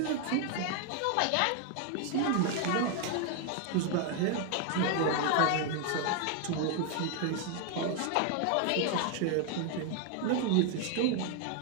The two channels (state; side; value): different; both; correlation 0.00